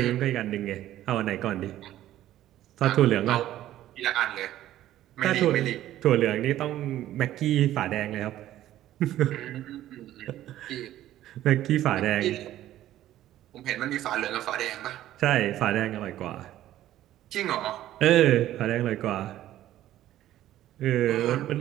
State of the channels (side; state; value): left; quieter; 13.3 dB